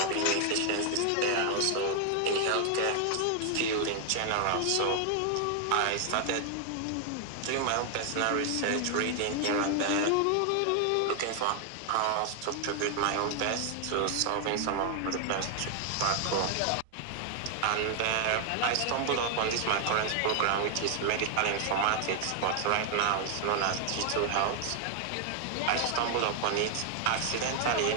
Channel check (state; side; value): different; both; correlation 0.00